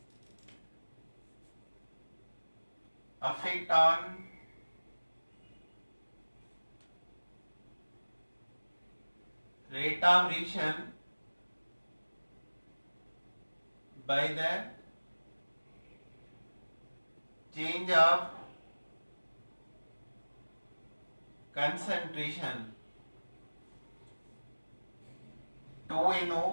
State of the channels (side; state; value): both; inverted; correlation -1.00